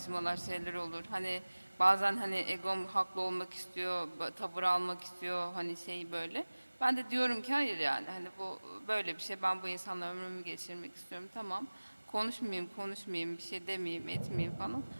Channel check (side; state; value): both; inverted; correlation -1.00